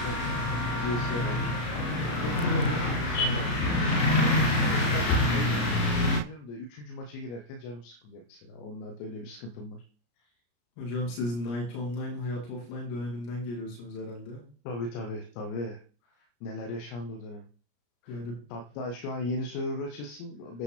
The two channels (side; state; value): right; late; 34 ms